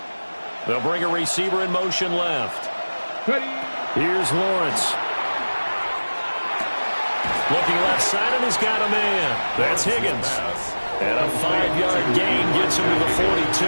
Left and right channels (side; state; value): both; inverted; correlation -1.00